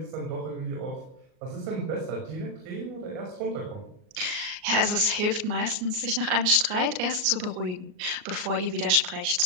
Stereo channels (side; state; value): left; late; 38 ms